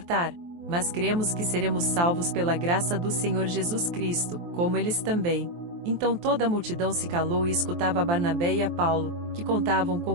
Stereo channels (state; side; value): late; left; 23 ms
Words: Mas cremos que seremos salvos pela graça do Senhor Jesus Cristo, como eles também. Então toda a multidão se calou e escutava a Barnabé e a Paulo, que contavam